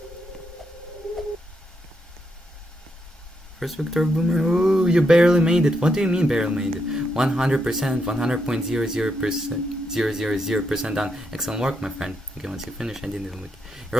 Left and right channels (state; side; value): normal; both; correlation 0.80